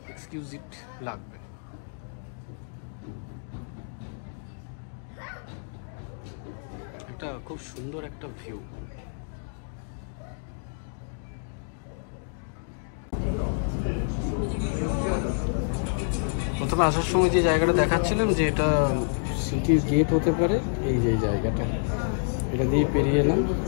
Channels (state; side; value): silent; right; digital silence